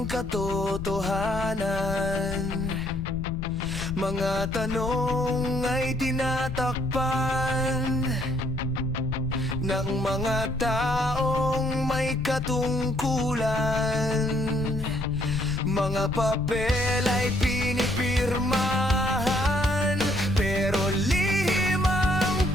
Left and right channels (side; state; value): left; noise; rumble, 8 dB below the sound